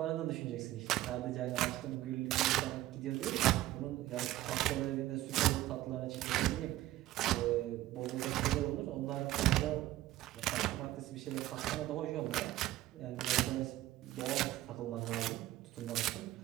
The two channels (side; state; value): left; quieter; 15.3 dB